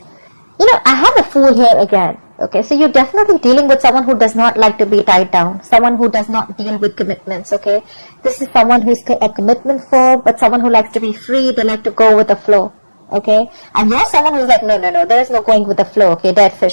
You know, I have a Fool here again. Okay, so you're definitely dealing with someone who does not like to be tied down. Someone who does not deal with commitments, okay? This is someone who's a commitment phobe, but someone who likes to be free. They like to go with the flow, okay? And you're someone who's like, no, there is no going with the flow, okay? Dead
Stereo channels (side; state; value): both; inverted; correlation -1.00